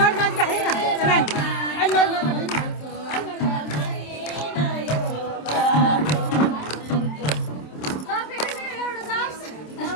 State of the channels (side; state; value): right; late; 27 ms